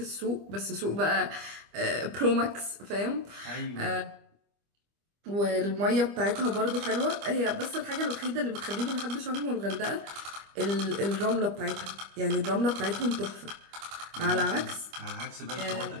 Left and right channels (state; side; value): late; left; 25 ms